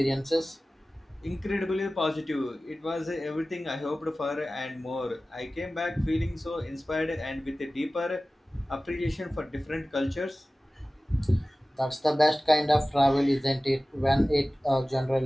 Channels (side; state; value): both; normal; correlation 0.97